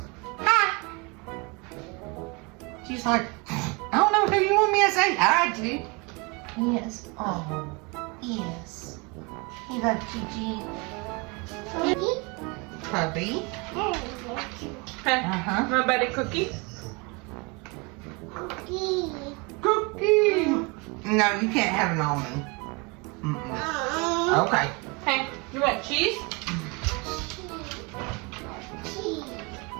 Hi. She's like, I don't know who you want me to say hi to. Yes. Oh, yes. You love Gigi. Puppy. Uh-huh. My buddy Cookie. Cookie. No, you can't have an almond. Okay. Hey, you want cheese?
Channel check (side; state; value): left; quieter; 29.1 dB